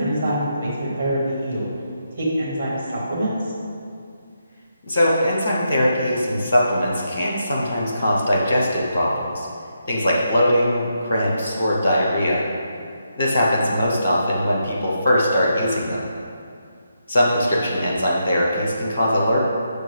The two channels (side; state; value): both; inverted; correlation -0.82